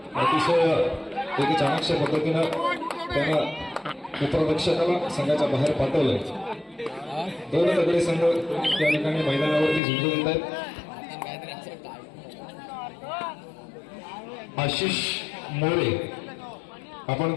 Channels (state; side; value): drops out; right; at 9.8 s